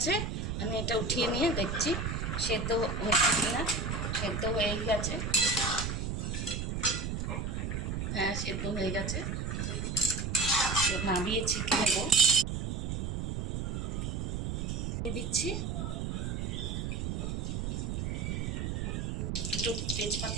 আমি এটা উঠিয়ে নিয়ে দেখছি সেদ্ধ হচ্ছে কিনা। সেদ্ধ হয়ে গেছে, হ্যাঁ সেদ্ধ হয়ে গেছে। নামিয়ে ছেঁকে নেব, দিচ্ছি দুটো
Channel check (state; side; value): noise; right; rumble, 2 dB below the sound